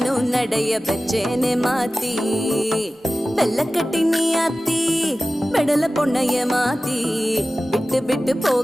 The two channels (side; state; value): both; normal; correlation 0.96